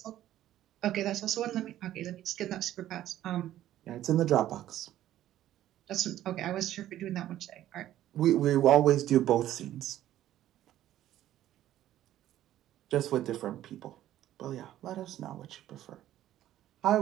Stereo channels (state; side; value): quieter; left; 13.0 dB